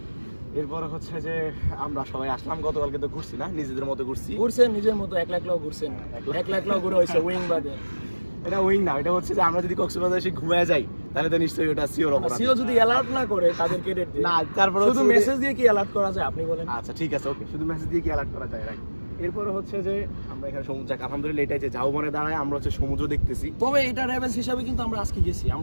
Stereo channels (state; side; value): inverted; both; correlation -1.00